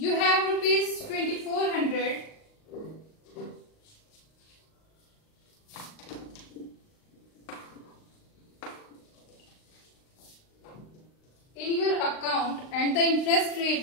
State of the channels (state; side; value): late; right; 38 ms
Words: have rupees 2,400 in your account and the interest